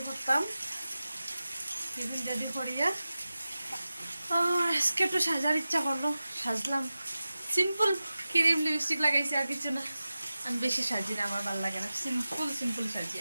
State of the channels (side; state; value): both; inverted; correlation -0.95